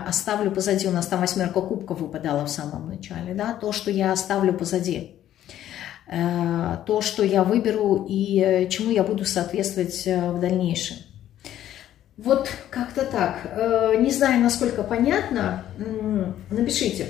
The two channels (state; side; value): quieter; right; 12.0 dB